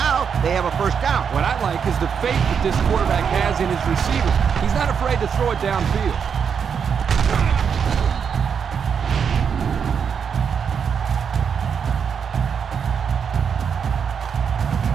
they have a first down. What I like is the faith that this quarterback has in his receiver. He's not afraid to throw it downfield.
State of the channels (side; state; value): left; quieter; 6.9 dB